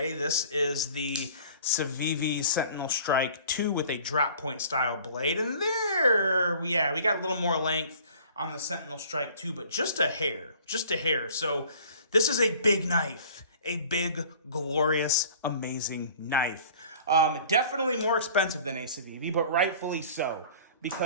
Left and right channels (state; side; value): inverted; both; correlation -0.48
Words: This is the Civivi Sentinel Strike 2 with a drop point style blade. And there, we got a little more length on the Sentinel Strike 2, but just a hair. So this is a big knife. A big, glorious, amazing knife. Definitely more expensive than a Civivi, but rightfully so,